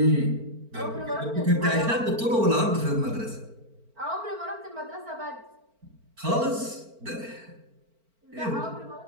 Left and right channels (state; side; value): late; left; 4.4 ms